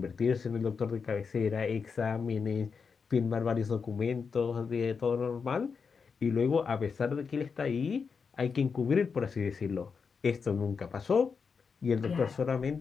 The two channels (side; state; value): right; quieter; 5.6 dB